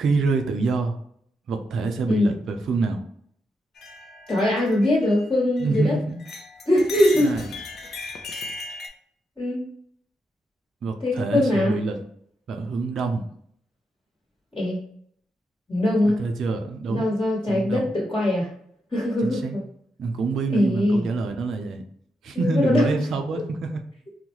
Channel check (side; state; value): both; normal; correlation 0.83